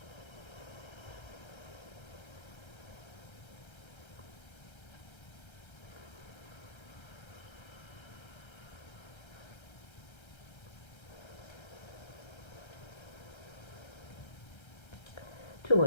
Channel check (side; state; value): right; late; 1.3 ms